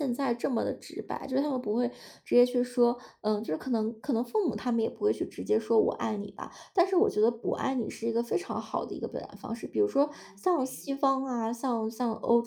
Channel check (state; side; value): identical; both; correlation 1.00